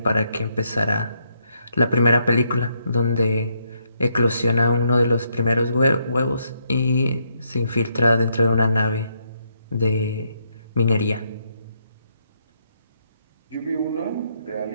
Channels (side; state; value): both; inverted; correlation -0.76